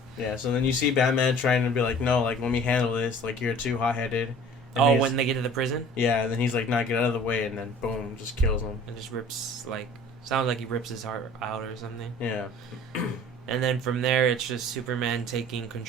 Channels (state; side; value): normal; both; correlation 0.47